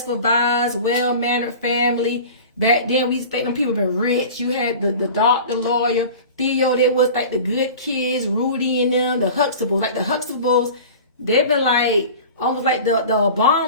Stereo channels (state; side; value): inverted; both; correlation -0.38